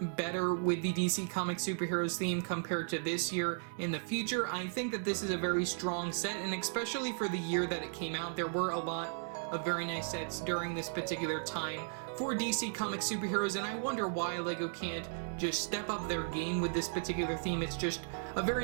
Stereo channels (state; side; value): silent; left; digital silence